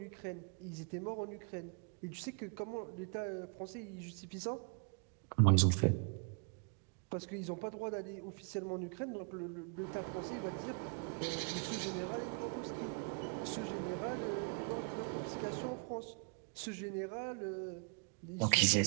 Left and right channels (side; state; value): left; quieter; 38.6 dB